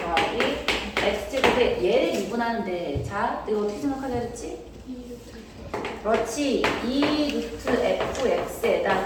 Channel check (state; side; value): identical; both; correlation 1.00